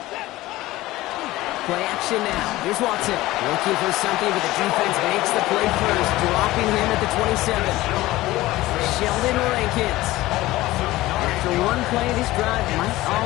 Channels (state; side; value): quieter; right; 17.7 dB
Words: Play action now. Here's Watson. Looking for something, but the defense makes the play first, dropping him at the 27. Sheldon Rankins. After one play, this drive might